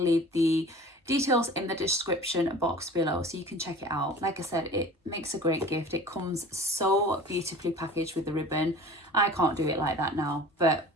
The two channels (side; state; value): both; normal; correlation 0.42